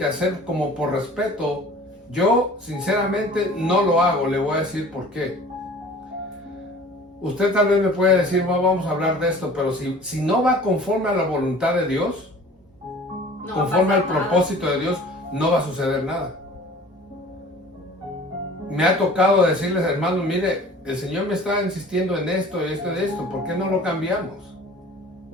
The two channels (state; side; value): normal; both; correlation 0.46